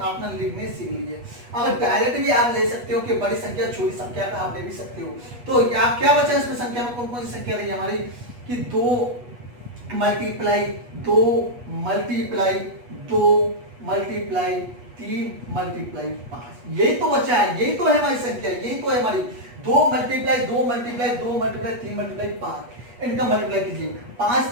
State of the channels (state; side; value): late; left; 8.3 ms